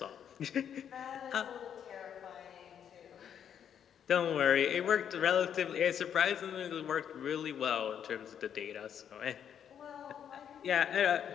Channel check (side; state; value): right; quieter; 8.7 dB